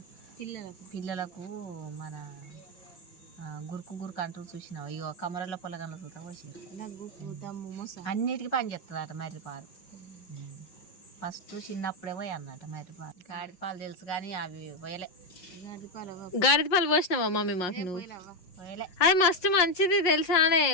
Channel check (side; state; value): right; late; 5.6 ms